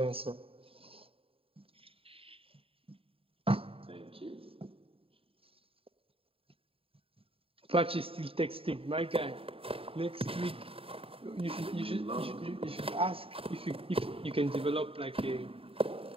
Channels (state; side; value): late; left; 0.27 ms